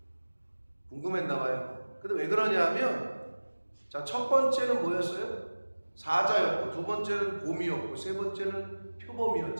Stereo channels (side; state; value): both; inverted; correlation -1.00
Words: 궁금했나 봐요. 근데 왜 그러냐면 자, 첫 번째는 뭐였어요? 사자였고, 두 번째는 곰이었고, 세 번째는